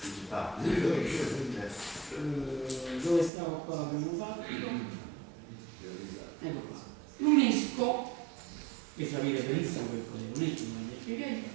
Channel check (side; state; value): left; drops out; at 3.3 s